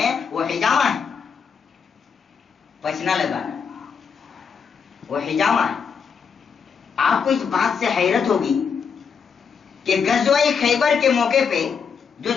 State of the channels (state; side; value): quieter; right; 6.4 dB